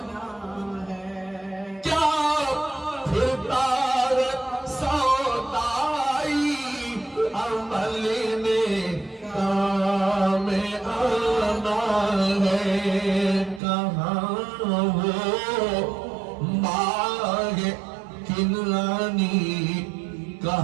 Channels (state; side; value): drops out; left; at 13.6 s